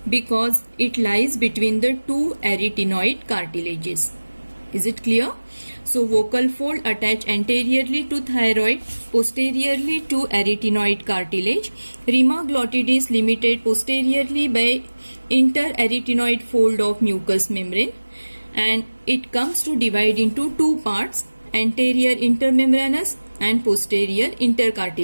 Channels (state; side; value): inverted; both; correlation -1.00